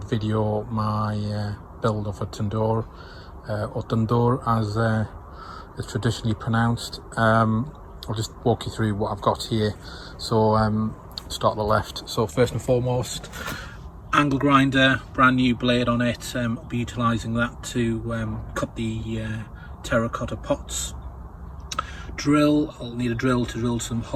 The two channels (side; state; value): both; identical; correlation 1.00